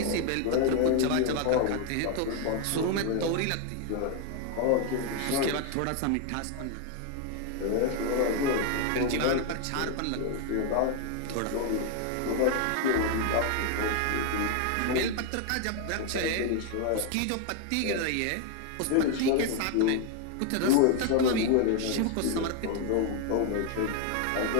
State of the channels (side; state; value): both; different; correlation 0.01